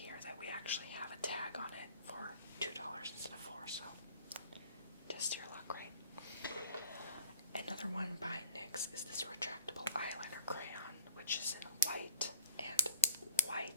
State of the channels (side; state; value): both; inverted; correlation -0.52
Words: that we actually have a tag on it for $2 instead of $4, so test your luck, right? Another one by NYX is this retractable eyeliner crayon, which is in white, and